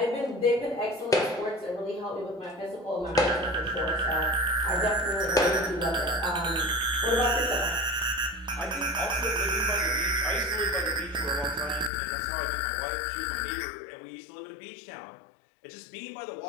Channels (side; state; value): right; drops out; at 11.9 s